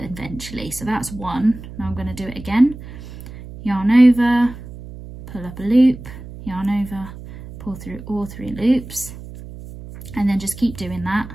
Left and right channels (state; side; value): noise; right; hum, 14 dB below the sound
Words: So that's 1. Now I'm going to do it again. Yarn over, pull up a loop, yarn over, pull through all 3 loops, and then just keep doing that.